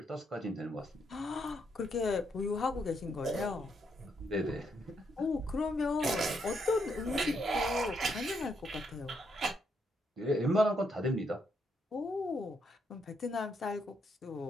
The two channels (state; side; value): normal; both; correlation 0.76